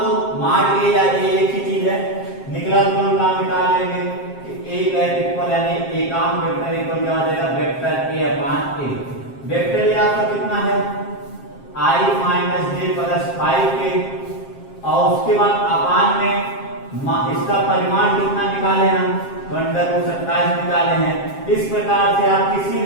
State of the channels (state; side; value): late; right; 7.5 ms